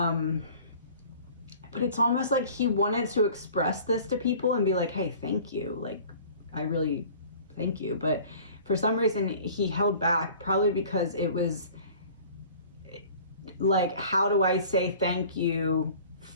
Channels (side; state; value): both; inverted; correlation -0.47